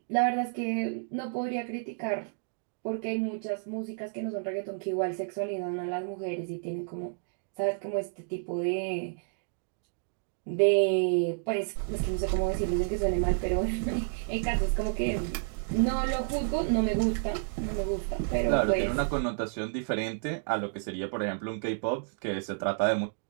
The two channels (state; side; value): silent; left; digital silence